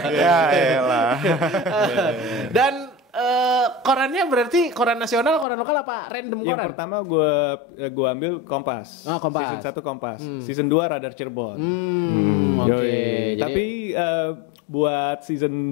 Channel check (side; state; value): right; drops out; at 5.5 s